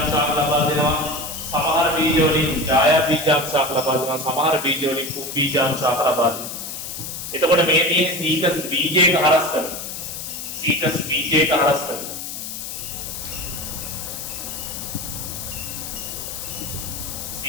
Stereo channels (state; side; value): noise; left; hiss, 7 dB below the sound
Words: ශාක ලබා දෙනවා. සමහර බීජ වලින් ඡායා බීජාණු ශාක ලබා දෙනවා. සමහර බීජ වලින් කුම් බීජාණු ශාක ලබා දෙනවා. එතකොට මේ තියෙන සීකස් බීජයක හරස් කරනවා. සීකස් බීජයක හරස් කරනවා.